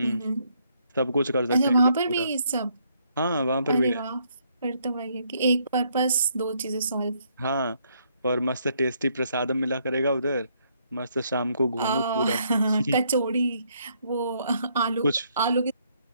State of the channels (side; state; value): both; inverted; correlation -0.71